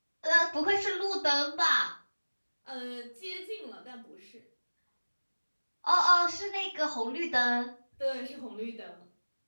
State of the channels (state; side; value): inverted; both; correlation -1.00